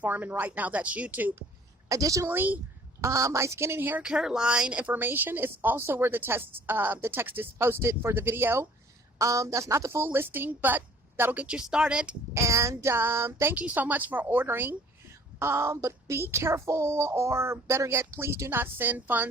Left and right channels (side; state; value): both; normal; correlation 0.54